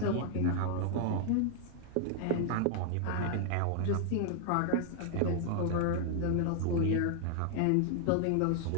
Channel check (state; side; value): different; both; correlation 0.00